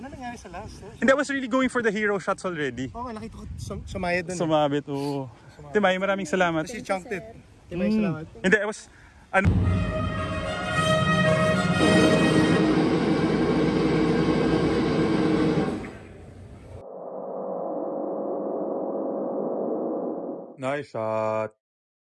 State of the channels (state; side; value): identical; both; correlation 1.00